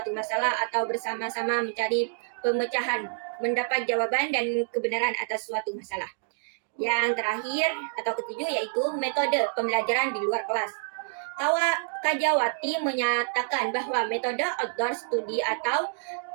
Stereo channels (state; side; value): silent; left; digital silence